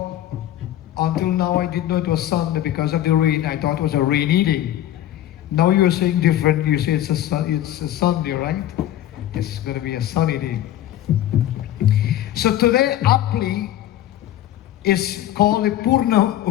until now I didn't know it was Sunday because of the rain. I thought it was a rainy day. Now you're saying different. You say it's a Sunday, right? It's going to be a sunny day. So today, aptly, is called the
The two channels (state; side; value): quieter; right; 12.7 dB